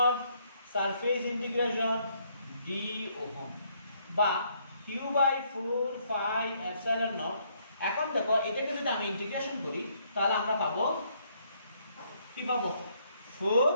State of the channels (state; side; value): inverted; both; correlation -0.69